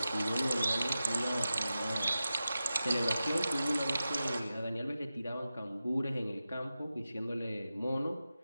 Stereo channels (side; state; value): both; inverted; correlation -0.93